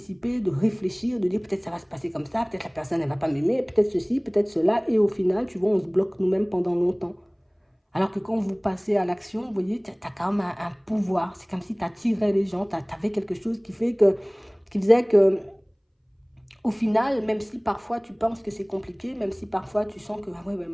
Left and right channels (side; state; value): both; identical; correlation 1.00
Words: de réfléchir, de dire peut-être ça va se passer comme ça, peut-être la personne elle va pas m'aimer, peut-être ceci, peut-être cela. Et au final, tu vois, on se bloque nous-mêmes pendant longtemps. Alors que quand vous passez à l'action, vous voyez, tu as quand même un pouvoir. C'est comme si tu attirais les gens, tu avais quelque chose qui faisait que, au final, même si parfois tu penses que c'est compliqué, même si parfois tu sens que, ah ouais, mais